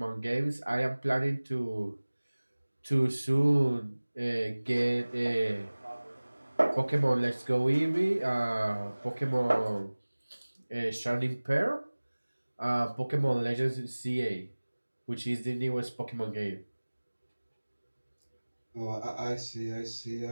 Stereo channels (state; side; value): inverted; both; correlation -1.00